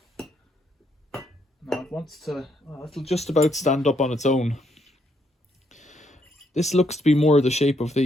No, it wants to. Oh, it'll just about stand up on its own. This looks to be more the shape of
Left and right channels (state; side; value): normal; both; correlation 0.74